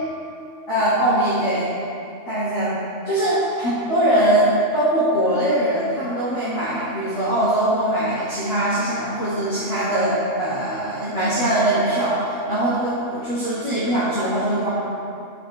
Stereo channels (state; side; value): late; right; 13 ms